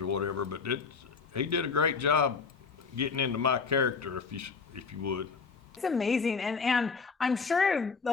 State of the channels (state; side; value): quieter; right; 5.1 dB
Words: whatever, but he did a great job getting into my character, if you would. It's amazing, and I'm sure